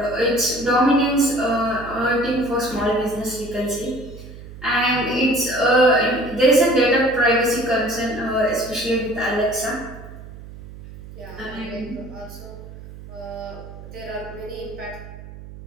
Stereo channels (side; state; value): right; noise; hum, 15 dB below the sound